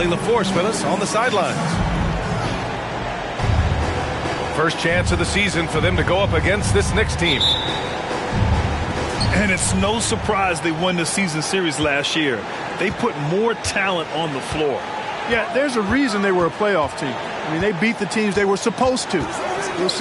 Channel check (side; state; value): both; identical; correlation 1.00